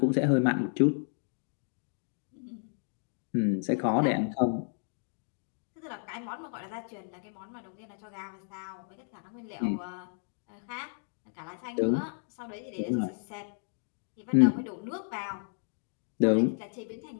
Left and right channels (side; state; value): right; silent; 56 dB below the other